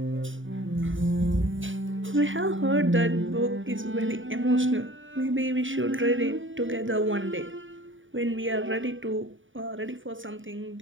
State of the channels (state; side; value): late; left; 0.57 ms